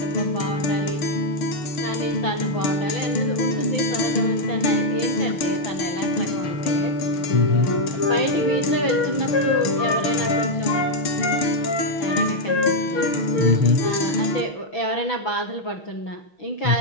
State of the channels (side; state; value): right; late; 6.0 ms